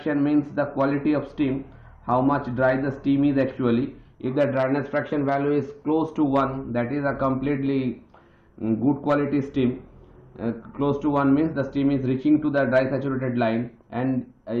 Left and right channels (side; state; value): both; identical; correlation 1.00